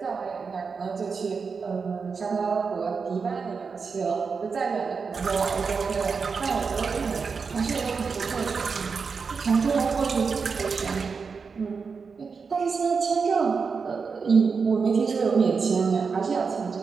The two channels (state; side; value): quieter; left; 5.3 dB